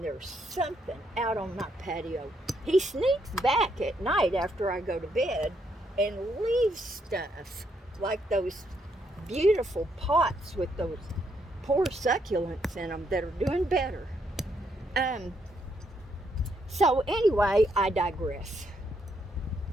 there's something out on my patio. He sneaks back at night after I go to bed and leaves stuff like those beautiful pots with those poor succulents in them that are doing better. So anyway, I digress.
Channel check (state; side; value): normal; both; correlation 0.75